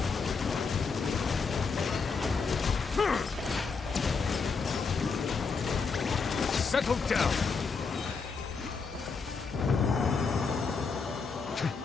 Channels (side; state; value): right; quieter; 5.0 dB